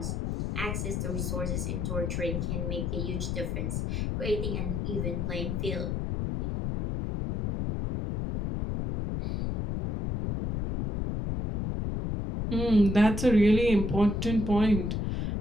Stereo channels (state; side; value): noise; left; rumble, 1 dB below the sound